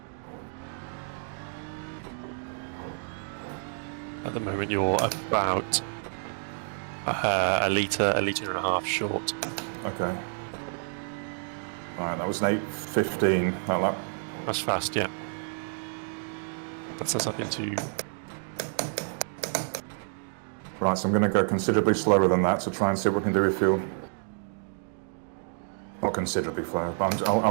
At the moment, you're about a litre and a half short. Okay. Alright, that was an 8:15, that lap. That's fast, yeah. That's us up into... Right, so I'm going to go considerably slower than that to try and see what we can do with fuel. Not considerably slower, but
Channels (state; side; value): silent; left; digital silence